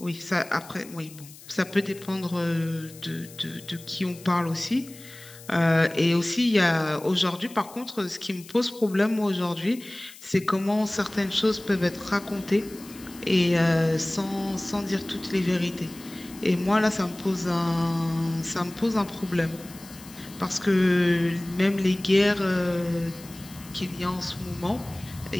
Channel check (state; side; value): noise; left; hiss, 19 dB below the sound